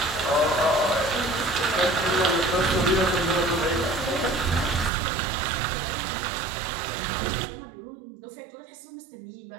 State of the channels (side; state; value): left; drops out; at 4.9 s